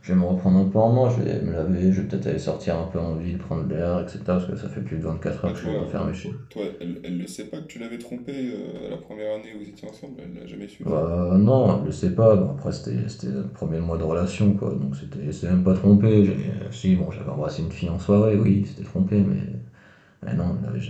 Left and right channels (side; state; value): both; identical; correlation 1.00